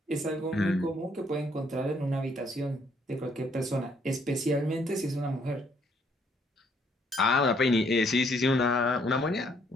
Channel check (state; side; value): normal; both; correlation 0.68